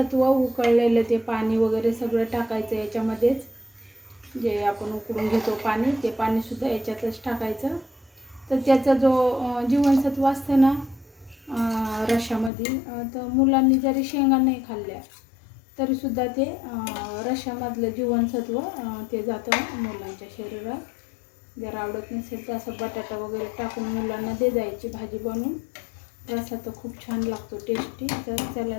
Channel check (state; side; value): drops out; right; at 12.5 s